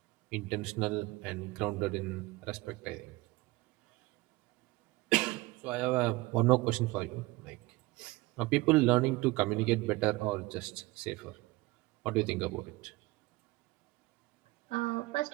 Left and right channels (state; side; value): quieter; left; 21.2 dB